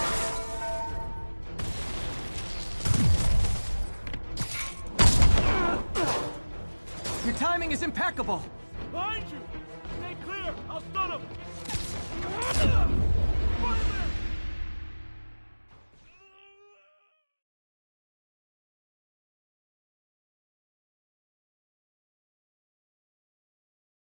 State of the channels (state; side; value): inverted; both; correlation -1.00